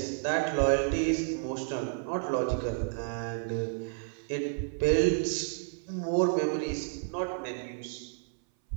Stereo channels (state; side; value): silent; left; 57 dB below the other